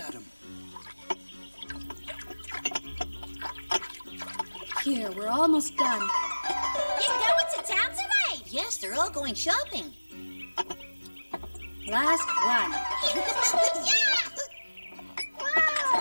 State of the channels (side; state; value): both; inverted; correlation -1.00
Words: Here, we're almost done. You going to town today? Yes, they're all going shopping. Last one. Yeah!